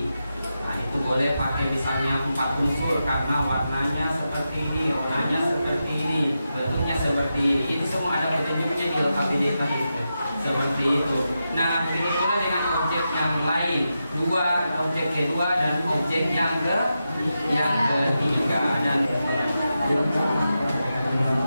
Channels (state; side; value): inverted; both; correlation -0.89